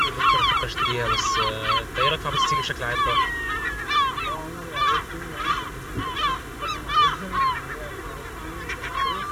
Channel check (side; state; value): both; identical; correlation 1.00